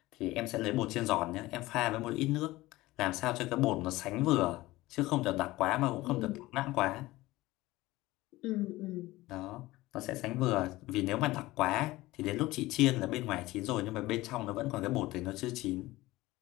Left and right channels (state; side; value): quieter; right; 18.7 dB